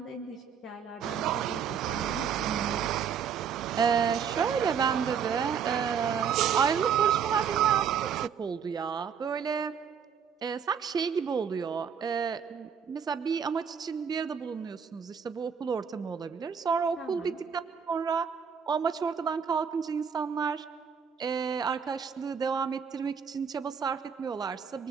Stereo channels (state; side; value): quieter; left; 7.2 dB